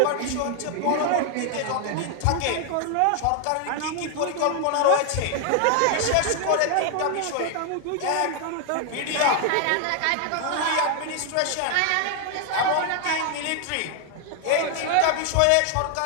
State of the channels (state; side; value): different; both; correlation 0.00